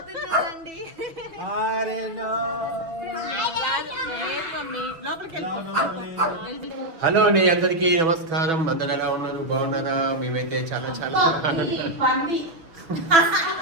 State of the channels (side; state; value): left; late; 6.3 ms